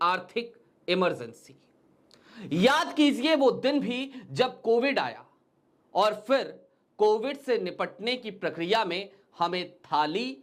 आर्थिक इमरजेंसी। याद कीजिए वो दिन भी जब कोविड आया और फिर कोविड से निपटने की प्रक्रिया में हमें थाली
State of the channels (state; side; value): identical; both; correlation 1.00